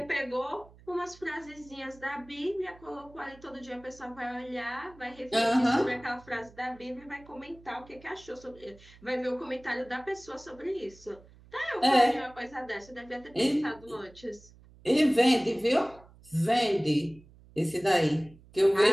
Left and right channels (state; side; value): noise; right; hum, 24 dB below the sound